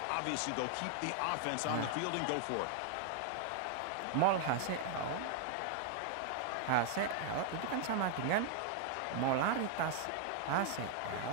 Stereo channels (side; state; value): both; different; correlation 0.00